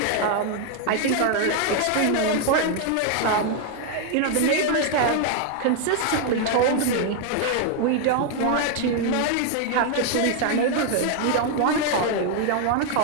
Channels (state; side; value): different; both; correlation 0.01